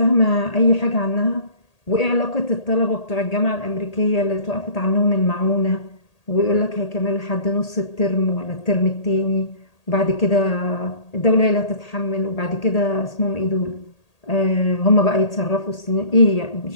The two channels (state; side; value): late; right; 1.8 ms